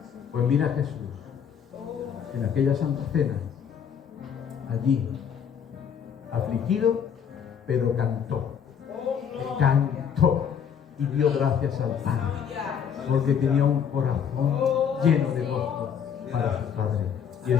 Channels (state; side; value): quieter; right; 7.8 dB